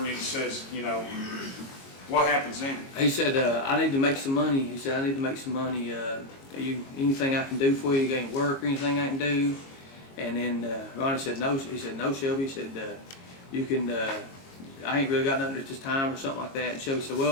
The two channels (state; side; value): late; right; 22 ms